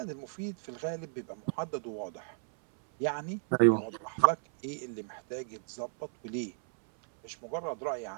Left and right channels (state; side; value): silent; left; 55 dB below the other